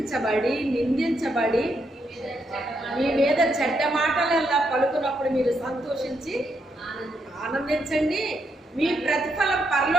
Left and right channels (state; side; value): normal; both; correlation 0.78